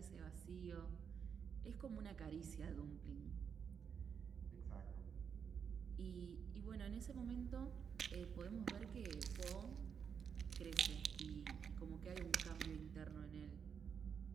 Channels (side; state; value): left; quieter; 7.0 dB